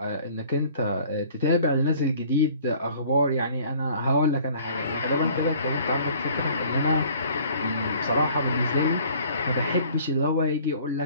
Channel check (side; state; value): both; inverted; correlation -0.53